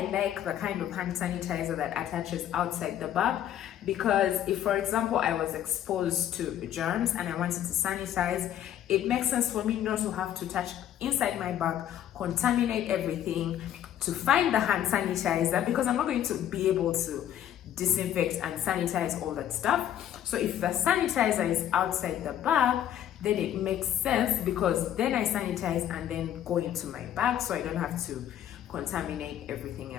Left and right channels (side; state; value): right; quieter; 11.0 dB